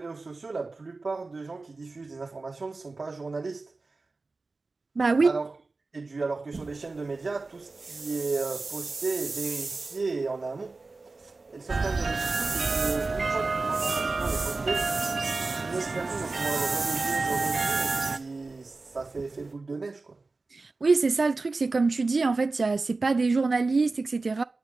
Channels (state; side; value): quieter; left; 3.6 dB